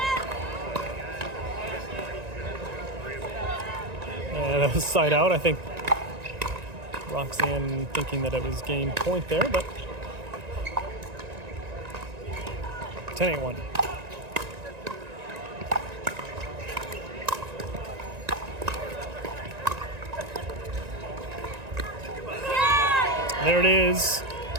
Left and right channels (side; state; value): left; late; 1.9 ms